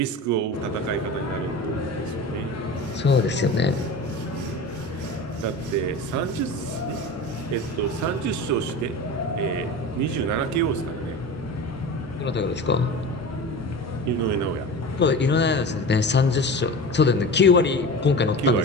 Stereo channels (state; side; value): normal; both; correlation 0.31